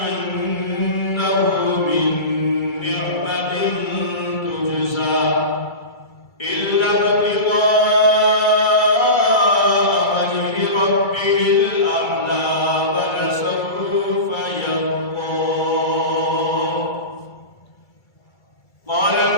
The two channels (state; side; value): late; right; 2.3 ms